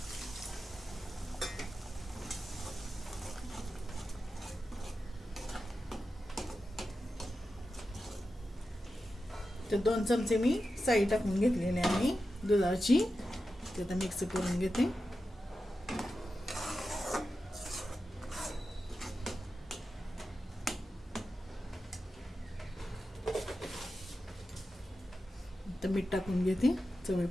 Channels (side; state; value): both; normal; correlation 0.91